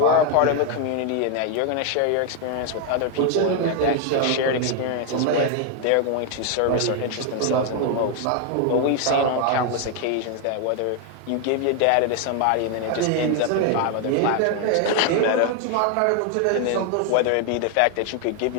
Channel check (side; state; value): both; different; correlation 0.01